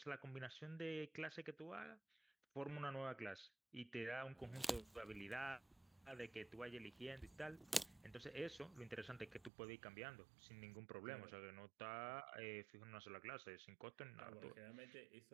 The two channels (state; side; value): drops out; left; at 9.5 s